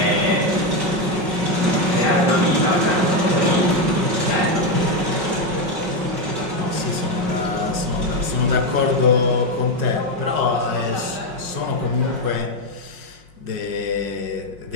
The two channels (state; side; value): late; left; 5.5 ms